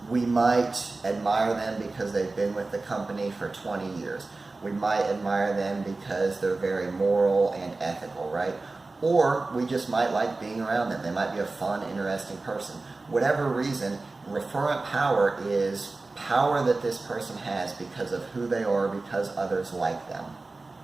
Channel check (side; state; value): left; quieter; 3.4 dB